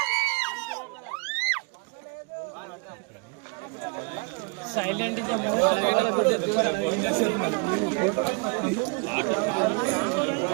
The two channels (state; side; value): quieter; left; 32.8 dB